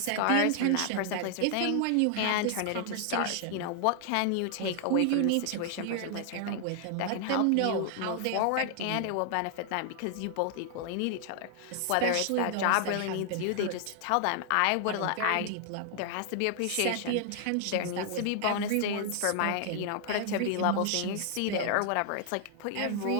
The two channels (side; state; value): both; different; correlation 0.00